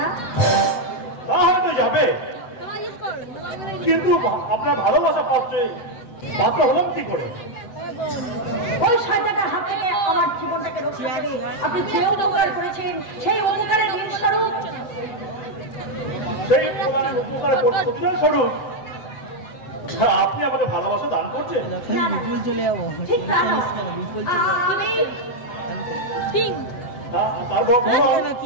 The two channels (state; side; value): late; right; 7.9 ms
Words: তা হয়তো যাবে, কিন্তু আপনার ভালোবাসা পাত্র হলাম কি করে? ওই শয়তানের হাত থেকে আমার জীবনটাকে রক্ষা করে আপনি যে উপকার করেছেন, সেই উপকারের স্বরূপ, সেই উপকারের প্রতিদান স্বরূপ আপনি আমাকে ভালোবাসা দান করছেন? ঠিক না? তারপর